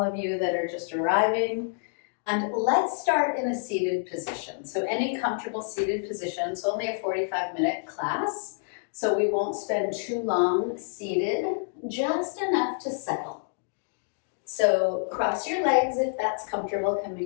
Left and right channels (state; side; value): silent; right; digital silence